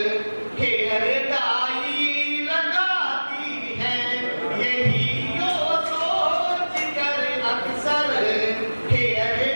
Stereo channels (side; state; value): both; inverted; correlation -1.00